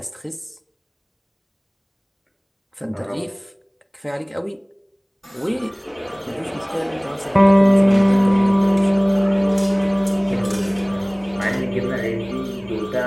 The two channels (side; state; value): both; identical; correlation 1.00